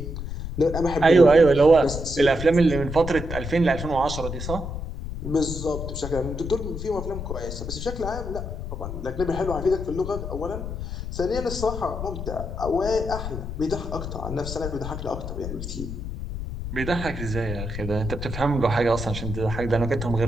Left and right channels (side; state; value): left; noise; rumble, 6 dB below the sound